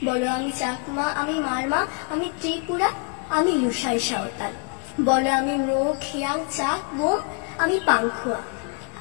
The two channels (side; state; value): right; quieter; 36.7 dB